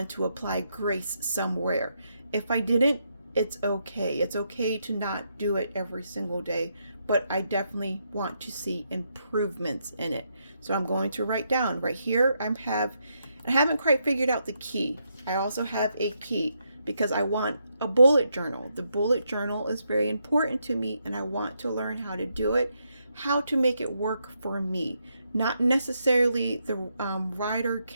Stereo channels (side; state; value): both; inverted; correlation -0.79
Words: to apply grace somewhere. If I didn't, it's okay. It's okay to not do it every single day, but I definitely want to see improvements in it. So I'm going to write down right here. I haven't quite figured out the key. I also have a key because I want a bullet journal. The bullet journal is very important to me, and I want to learn how to do it, how to make it work for me. Not necessarily the Ryder